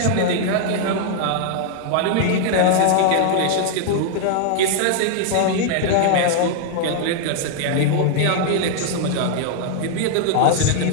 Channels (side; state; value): both; different; correlation 0.00